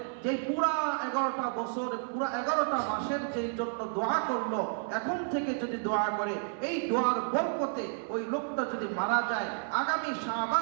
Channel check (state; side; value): silent; left; digital silence